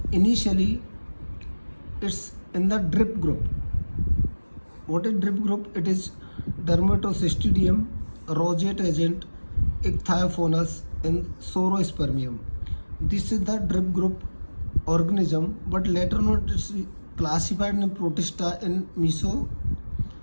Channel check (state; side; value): inverted; both; correlation -1.00